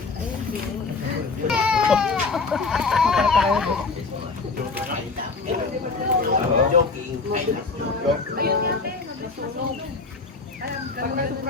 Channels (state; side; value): quieter; right; 4.2 dB